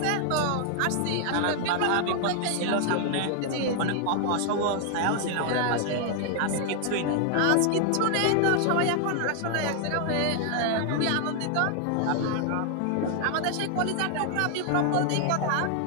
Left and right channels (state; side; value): different; both; correlation 0.00